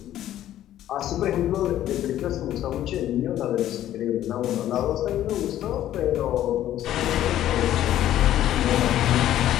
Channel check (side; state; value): right; quieter; 12.5 dB